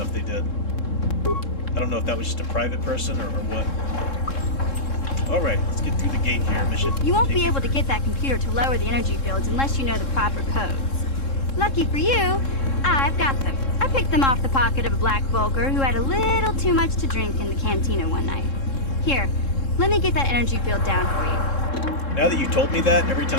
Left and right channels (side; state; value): right; late; 3.7 ms